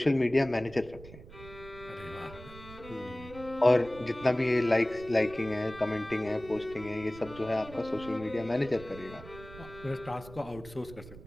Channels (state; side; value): noise; right; rumble, 17 dB below the sound